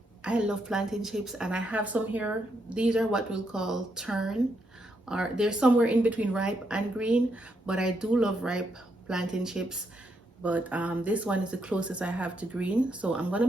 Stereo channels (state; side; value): normal; both; correlation 0.79